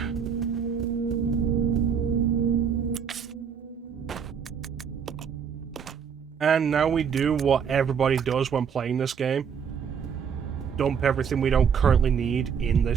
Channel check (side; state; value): left; quieter; 7.1 dB